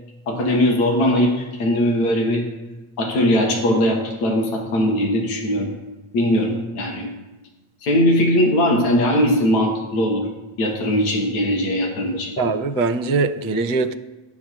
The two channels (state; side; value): late; right; 9.0 ms